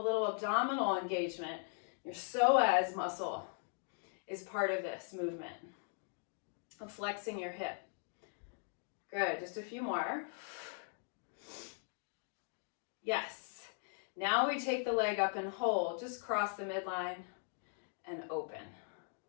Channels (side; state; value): right; silent; 51 dB below the other